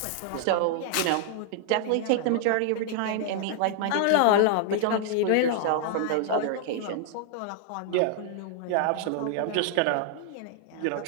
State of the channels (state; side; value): different; both; correlation -0.01